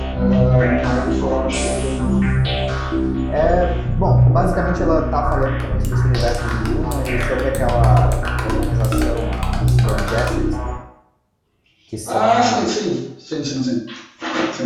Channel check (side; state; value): both; identical; correlation 1.00